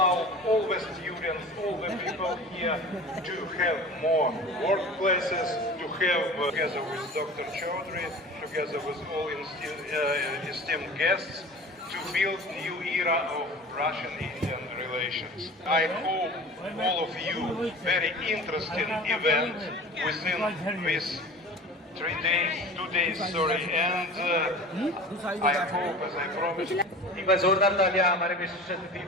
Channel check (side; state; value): both; normal; correlation 0.38